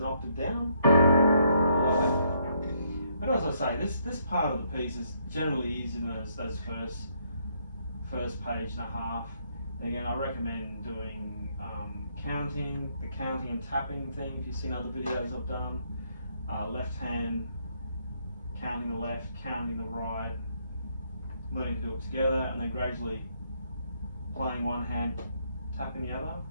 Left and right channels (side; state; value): both; inverted; correlation -0.72